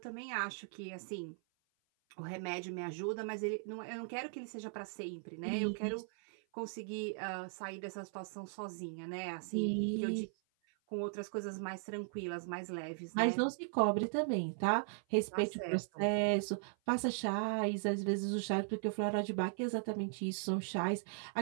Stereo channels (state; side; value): silent; left; 52 dB below the other